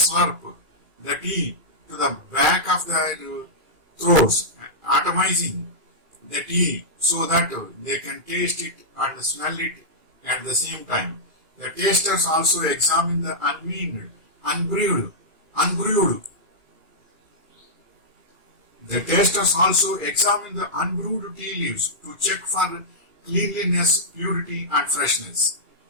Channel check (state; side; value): late; left; 2.4 ms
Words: the tea to the back of their throats, atomizing the tea so that they can taste it and smell it at the same time. The tasters also examine the unbrewed tea leaves to check for cleanliness, purity and freshness.